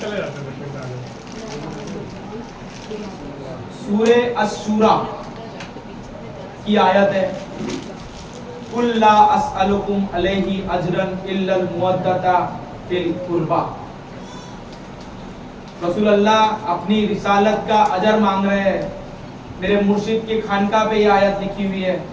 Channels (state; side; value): identical; both; correlation 1.00